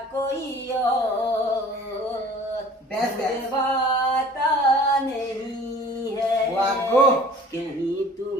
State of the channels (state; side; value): normal; both; correlation 0.48